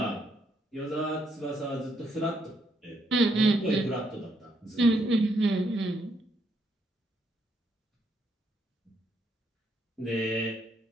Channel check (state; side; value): normal; both; correlation 0.75